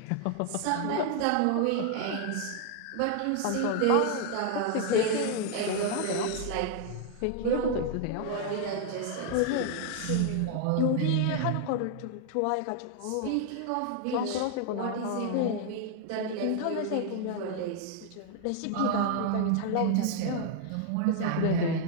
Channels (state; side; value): different; both; correlation 0.00